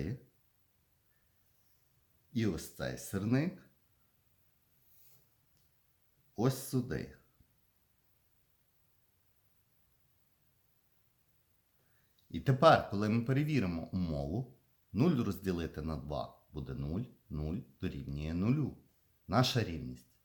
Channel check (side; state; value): both; identical; correlation 1.00